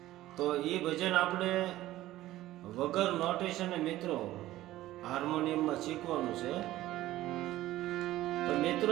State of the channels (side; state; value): left; quieter; 15.4 dB